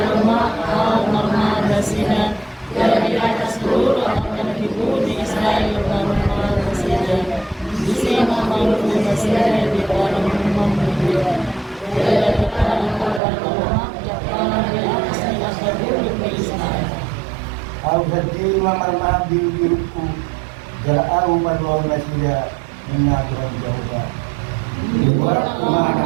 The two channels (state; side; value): drops out; left; at 13.2 s